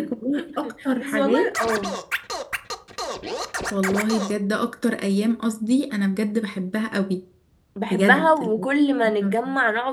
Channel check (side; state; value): both; identical; correlation 1.00